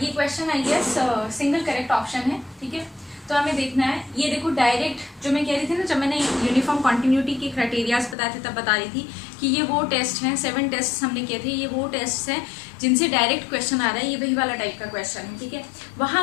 question I guess single correct option है। ठीक है, तो हमें देखना है, ये देखो डायरेक्ट जो मैं कह रही थी ना, जब मैंने यूनिफॉर्म कॉन्टिन्यूटी के क्राइटेरियाज बताए थे तब बता रही थी कि ये वो टेस्ट हैं, 7 टेस्ट हमने किए थे, ये वो टेस्ट हैं जिनसे डायरेक्ट क्वेश्चन आ रहा है, ये वही वाला टाइप का क्वेश्चन है। ठीक है, वहाँ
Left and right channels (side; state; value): right; drops out; at 8.2 s